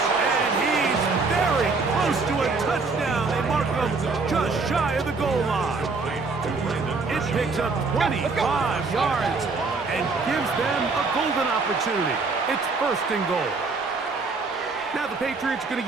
and he's very close to a touchdown. They mark him just shy of the goal line. It picks up 25 yards and gives them a golden opportunity. It's 1st and goal. Now the Patriots are going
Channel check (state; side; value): quieter; left; 4.1 dB